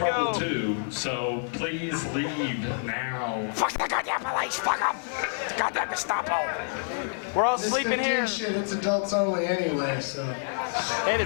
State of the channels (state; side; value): silent; right; digital silence